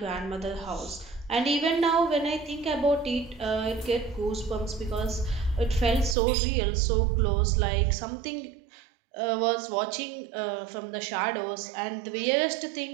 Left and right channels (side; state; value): left; drops out; at 6.2 s